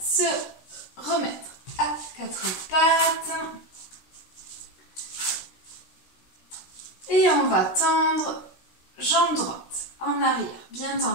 remettre à quatre pattes. Et on va tendre jambe droite en arrière, bien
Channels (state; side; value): late; right; 16 ms